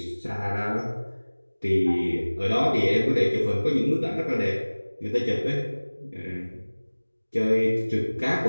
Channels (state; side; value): inverted; both; correlation -1.00